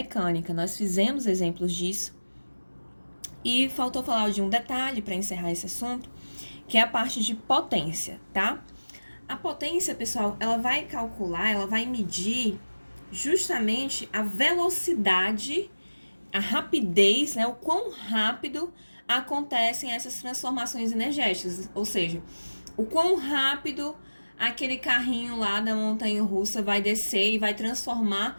nós fizemos exemplos disso. E faltou falar de um detalhe para encerrar esse assunto, que é a parte de potência, tá? A potência, pessoal, ela vai calcular, ela vai medir justamente a velocidade, a rapidez, né, o quão rápido acontecem essas transformações energéticas, ou seja, o quão rápido aquele carrinho lá da montanha-russa vai descer e vai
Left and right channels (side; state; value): both; inverted; correlation -1.00